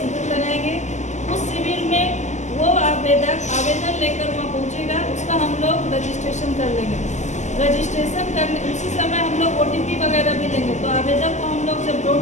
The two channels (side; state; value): right; late; 0.34 ms